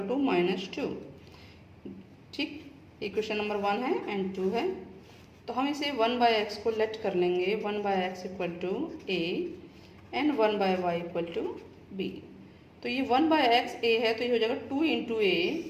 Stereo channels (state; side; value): identical; both; correlation 1.00